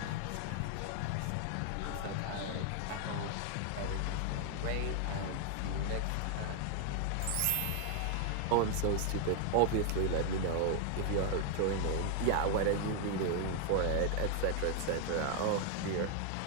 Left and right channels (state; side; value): different; both; correlation 0.00